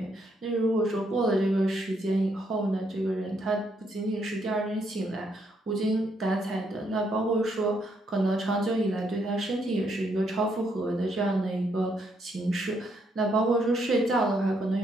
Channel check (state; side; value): normal; both; correlation 0.74